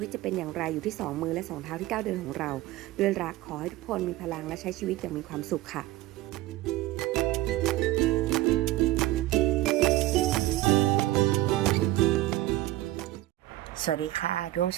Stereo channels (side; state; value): left; quieter; 16.6 dB